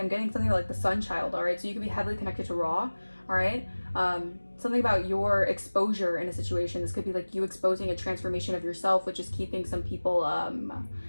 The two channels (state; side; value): inverted; both; correlation -1.00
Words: getting something like the sun child. All right, so you could be heavily connected to Ra. All right, something about your exposure in a situation. This could be like you exposing a transformation of yourself, which is keeping some people